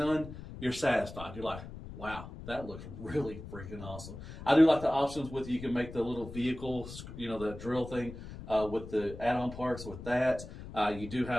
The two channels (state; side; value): noise; left; rumble, 12 dB below the sound